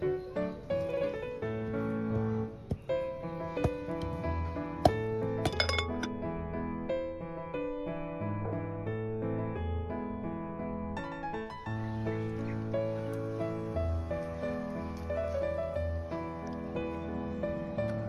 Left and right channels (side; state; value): both; identical; correlation 1.00